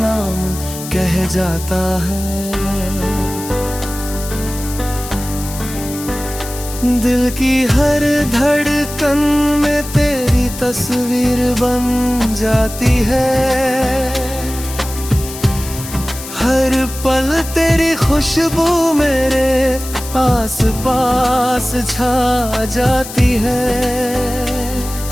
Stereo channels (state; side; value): noise; left; hiss, 11 dB below the sound